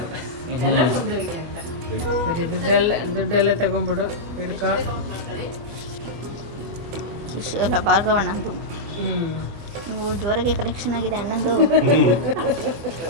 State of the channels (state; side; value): late; left; 25 ms